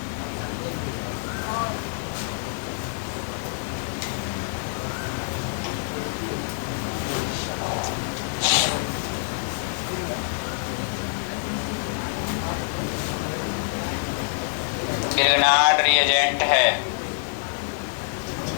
ग्रिग्नार्ड रिएजेंट है।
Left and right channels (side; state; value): right; silent; 61 dB below the other